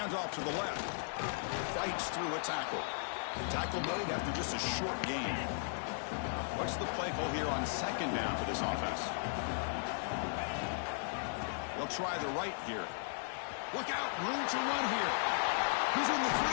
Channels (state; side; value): silent; right; 53 dB below the other